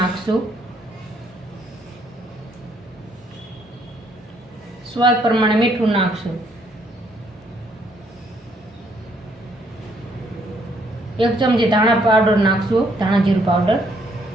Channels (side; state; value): both; normal; correlation 0.69